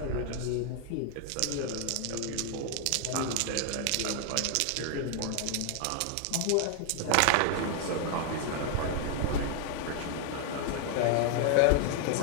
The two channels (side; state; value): both; different; correlation 0.00